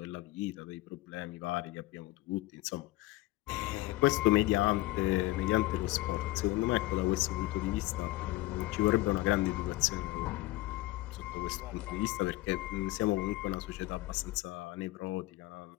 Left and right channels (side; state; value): right; quieter; 18.9 dB